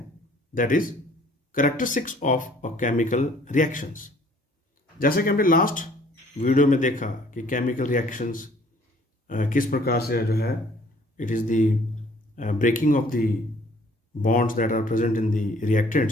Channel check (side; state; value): both; normal; correlation 0.57